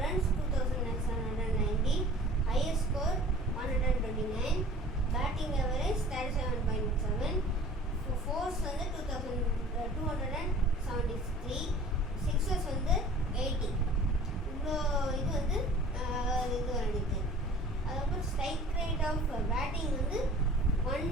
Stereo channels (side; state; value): both; normal; correlation 0.46